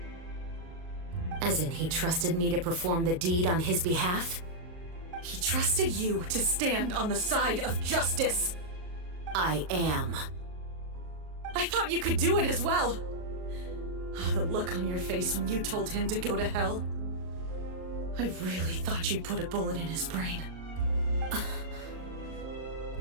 As in, he trusted me to perform the deed on his behalf? He trusted you to stand on the side of justice. I am. I thought you could do it as well. Oh, the look on your face when you told him to go to hell. I really thought you'd put a bullet in his brain.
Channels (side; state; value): left; late; 39 ms